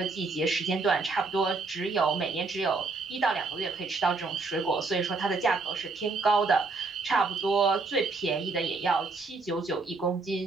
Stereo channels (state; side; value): quieter; left; 3.9 dB